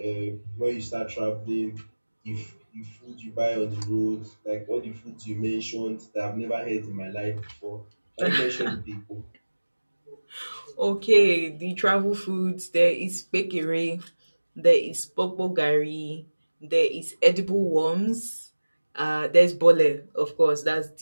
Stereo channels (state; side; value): inverted; both; correlation -1.00